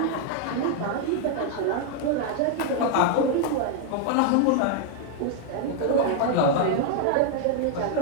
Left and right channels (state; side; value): different; both; correlation 0.00